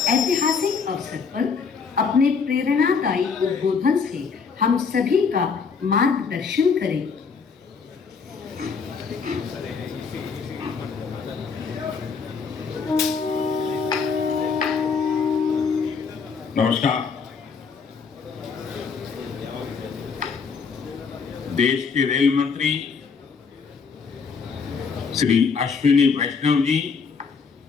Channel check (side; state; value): right; quieter; 5.5 dB